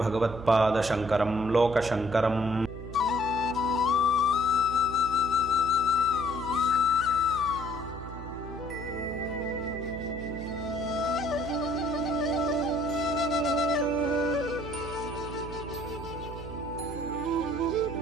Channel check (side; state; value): right; noise; hum, 11 dB below the sound